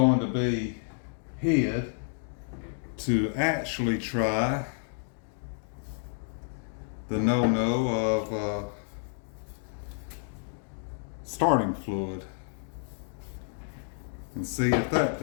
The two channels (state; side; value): silent; right; 58 dB below the other